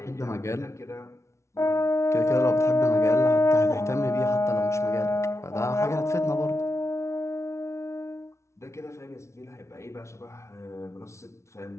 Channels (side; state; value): right; late; 0.13 ms